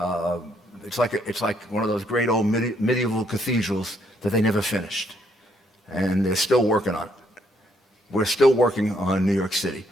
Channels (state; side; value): normal; both; correlation 0.71